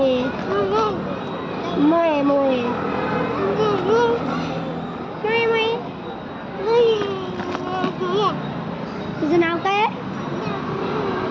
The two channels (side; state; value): both; identical; correlation 1.00